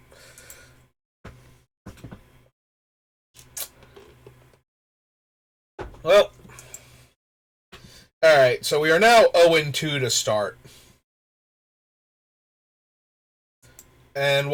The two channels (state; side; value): identical; both; correlation 1.00